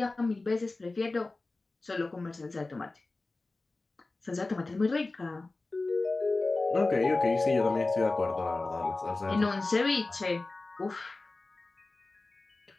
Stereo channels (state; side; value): quieter; right; 3.3 dB